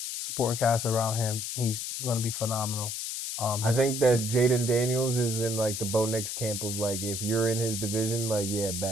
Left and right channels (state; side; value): noise; left; hiss, 4 dB below the sound